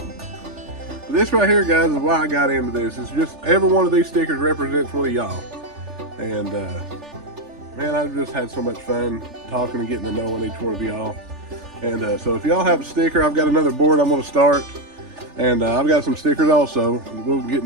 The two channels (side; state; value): left; late; 3.4 ms